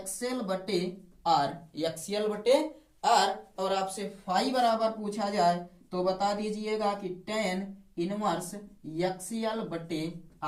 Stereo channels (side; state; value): both; identical; correlation 1.00